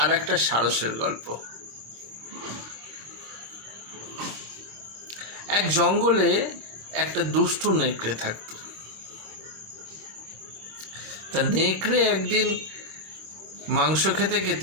একটা সারসের গল্প। এক জঙ্গলে একটা দুষ্টু নেকড়ে থাকতো। তা নেকড়ে একদিন মাংস খেতে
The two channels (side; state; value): left; late; 25 ms